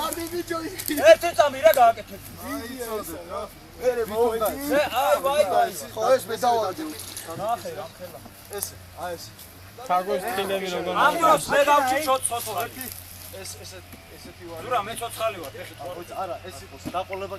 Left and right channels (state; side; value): identical; both; correlation 1.00